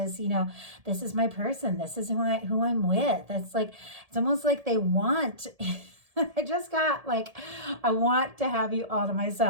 this is my person, this is who I'm with. It's like, it's almost like they want I just got like, I want to have you all to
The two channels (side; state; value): left; late; 1.7 ms